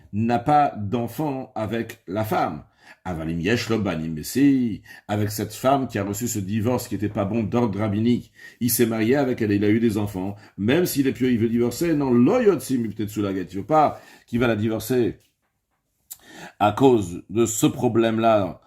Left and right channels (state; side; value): identical; both; correlation 1.00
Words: n'a pas d'enfant avec la femme. Avalim yesh lo banim, mais si, avec cette femme qui a reçu ce divorce qui n'était pas bon d'ordre rabbinique, il s'est marié avec elle et il a eu des enfants, même s'il est pieux, il veut divorcer, non, loyotsim, peut-être sous la guette, il ne veut pas qu'il va la divorcer à cause de ce problème-là,